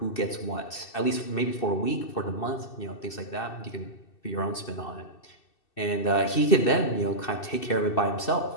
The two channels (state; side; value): late; right; 2.6 ms